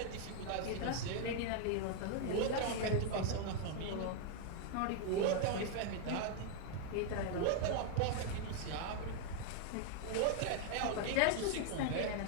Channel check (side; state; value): both; different; correlation 0.00